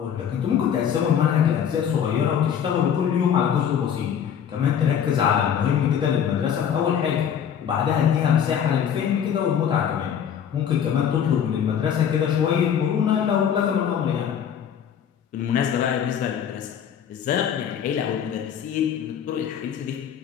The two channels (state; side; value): quieter; right; 8.6 dB